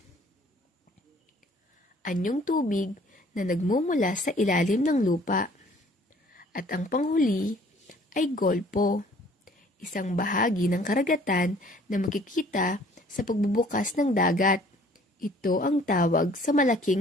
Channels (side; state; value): both; normal; correlation 0.56